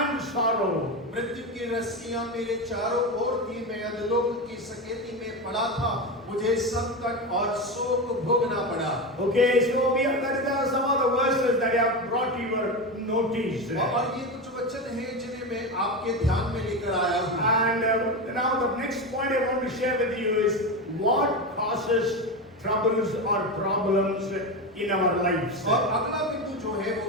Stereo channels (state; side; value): normal; both; correlation 0.18